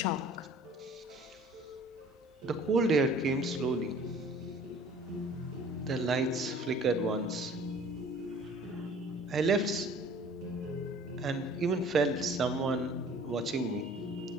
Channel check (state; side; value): normal; both; correlation 0.50